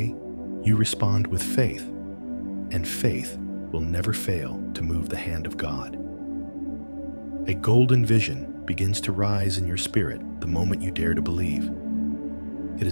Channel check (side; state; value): both; inverted; correlation -1.00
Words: you respond with faith, and faith will never fail to move the hand of God. A golden vision begins to rise in your spirit the moment you dare to believe. It